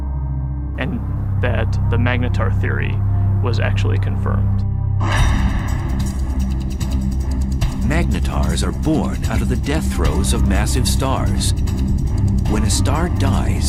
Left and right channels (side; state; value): both; identical; correlation 1.00